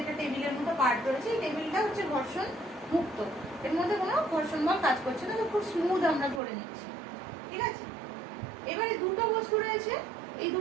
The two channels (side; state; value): left; drops out; at 6.4 s